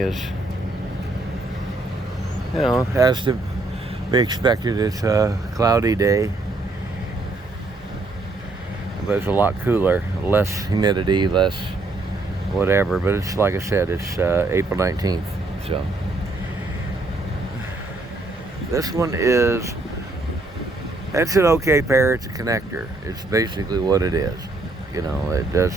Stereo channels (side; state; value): left; quieter; 3.0 dB